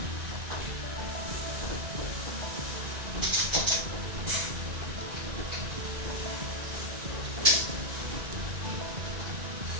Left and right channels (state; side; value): late; left; 1.9 ms